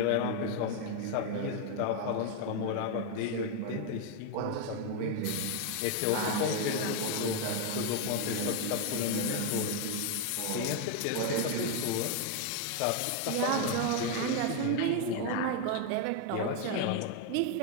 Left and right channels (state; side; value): different; both; correlation 0.01